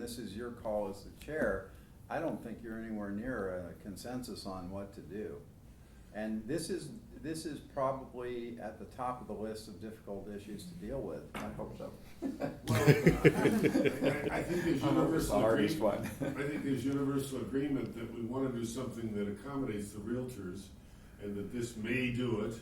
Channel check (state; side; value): identical; both; correlation 1.00